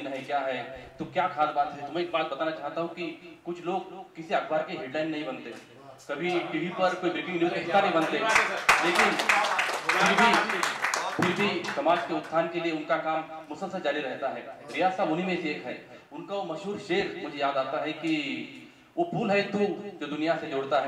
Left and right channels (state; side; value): identical; both; correlation 1.00